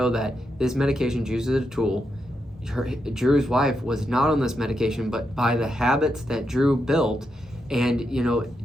that this medication uses a tool. Drew's wife was not on this medication, but by the habits that Drew built, and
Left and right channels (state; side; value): normal; both; correlation 0.84